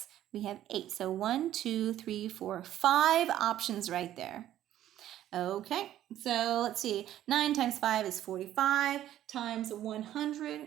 we have 8. So 1, 2, 3, 4, 5 options right there. Okay, so let's see. 9 times 5 is 45, times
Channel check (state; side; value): quieter; left; 12.4 dB